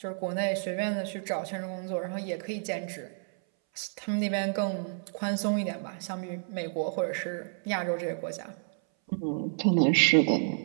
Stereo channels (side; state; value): left; silent; 58 dB below the other